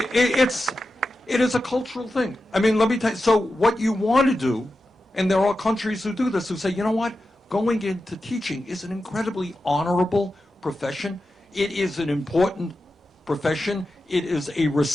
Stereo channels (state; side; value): normal; both; correlation 0.91